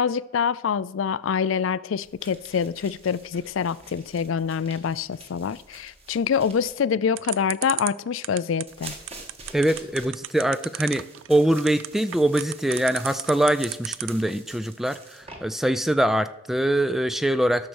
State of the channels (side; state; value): both; normal; correlation 0.50